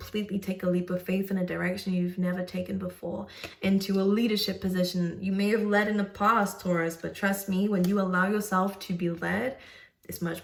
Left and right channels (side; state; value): both; identical; correlation 1.00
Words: take a leap of faith in a direction you've never taken before, into a leadership position. You may have led in the past, Taurus, but trust me, when you allow yourself to be led, it's much